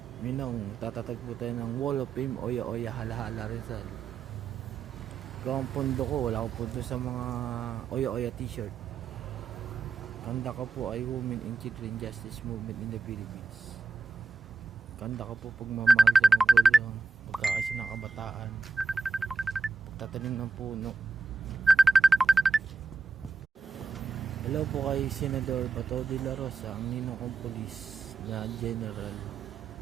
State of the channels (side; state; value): left; quieter; 4.0 dB